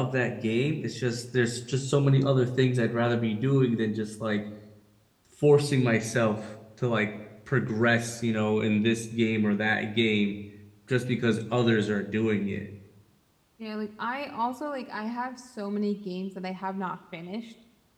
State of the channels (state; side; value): identical; both; correlation 1.00